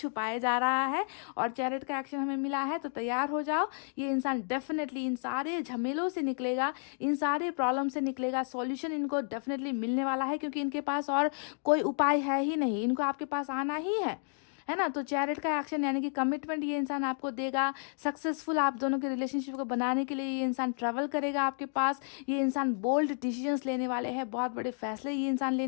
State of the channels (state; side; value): silent; right; 57 dB below the other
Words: जा रहा है। और चैरिट का एक्शन हमें मिला है, तो तैयार हो जाओ, ये इंसान डेफिनेटली इन सारे झमेलों से निकलेगा, इन सारे प्रॉब्लम से निकलेगा। सॉल्यूशन इनको डेफिनेटली मिलने वाला है, क्योंकि इनके पास और कोई उपाय है ही नहीं, इनको आपके पास आना ही है है ना। तो चैरिट का एक्शन यानी कि कमिटमेंट ये इंसान आपको देगा, सक्सेसफुल आप दोनों के रिलेशनशिप को बनाने के लिए ये इंसान ट्रैवल करेगा आपके पास। ये इंसान बोल्ड डिसीजंस लेने वाले हैं, बहुत बड़े फैसले ये इंसान